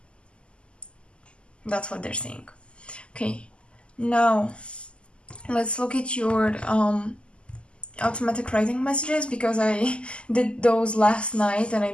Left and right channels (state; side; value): late; right; 0.052 ms